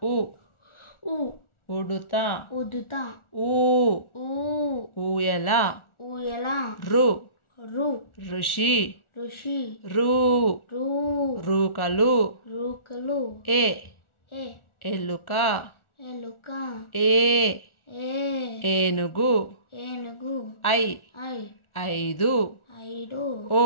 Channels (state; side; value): late; right; 1.4 ms